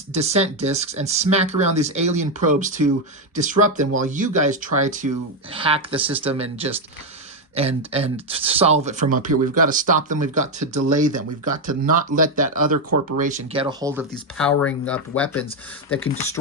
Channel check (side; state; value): both; normal; correlation 0.05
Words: discs and smack around these alien probes to disrupt them while you guys try to hack the system and just... and solve it from up here. We've got to stop them. We've got to delay them. We've got to not let that other corporation get a hold of these powering up weapons that can